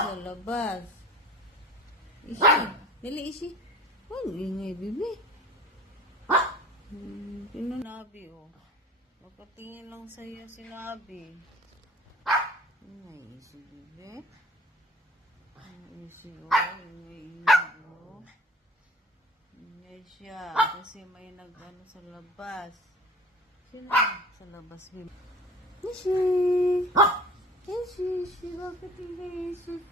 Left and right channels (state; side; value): normal; both; correlation 0.45